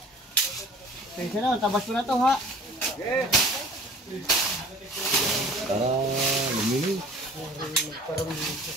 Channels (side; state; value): both; normal; correlation 0.47